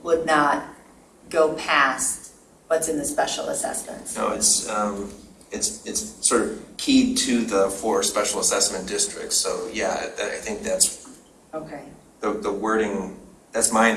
would not go past what's in the special assessments. No, it's sort of keyed to the 4 special assessment districts. So yeah, I think that's okay. The wording. That's my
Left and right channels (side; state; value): both; identical; correlation 1.00